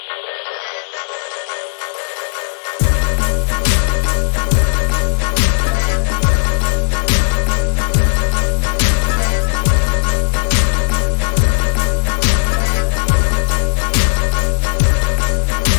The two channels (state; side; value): silent; right; 70 dB below the other